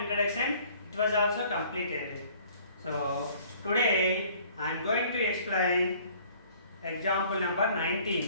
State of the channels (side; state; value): both; inverted; correlation -0.55